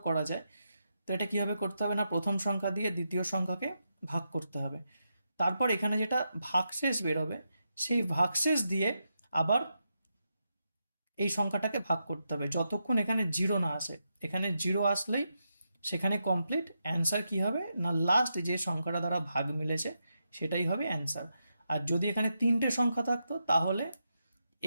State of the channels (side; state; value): both; inverted; correlation -0.85